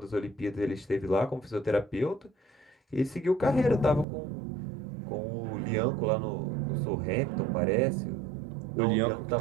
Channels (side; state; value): left; drops out; at 4.0 s